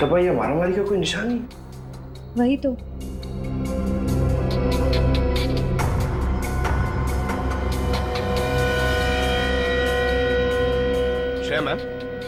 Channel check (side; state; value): both; identical; correlation 1.00